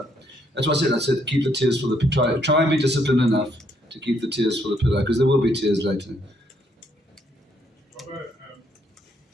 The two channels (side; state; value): both; normal; correlation 0.71